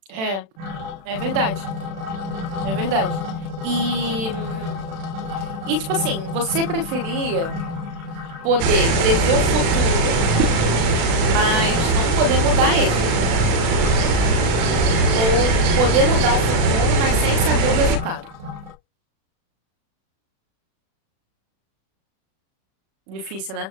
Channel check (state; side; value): late; left; 36 ms